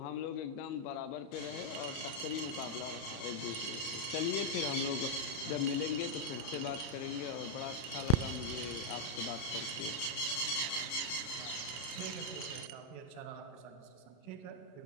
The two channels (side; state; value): right; late; 33 ms